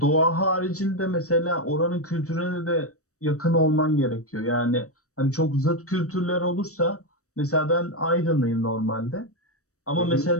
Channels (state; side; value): late; right; 0.65 ms